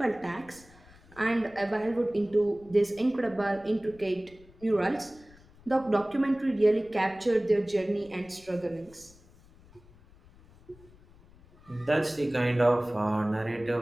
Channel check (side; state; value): left; noise; rumble, 25 dB below the sound